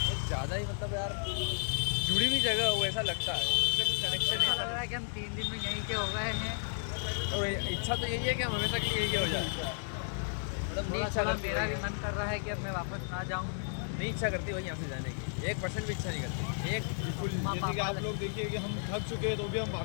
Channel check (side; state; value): right; silent; digital silence